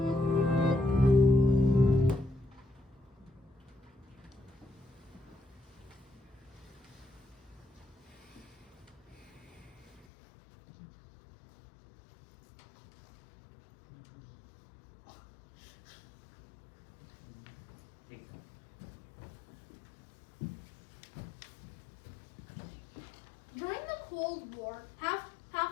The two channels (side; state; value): right; drops out; at 10.1 s